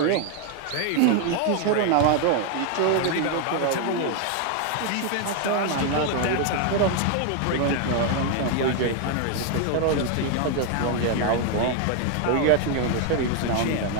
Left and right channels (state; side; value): different; both; correlation 0.01